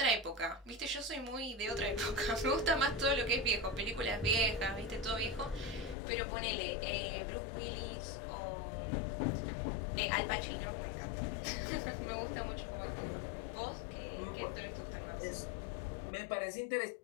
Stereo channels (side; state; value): right; drops out; at 6.0 s